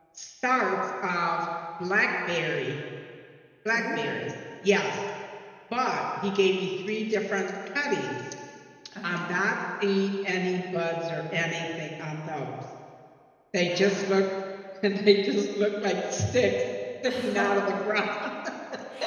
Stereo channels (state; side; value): identical; both; correlation 1.00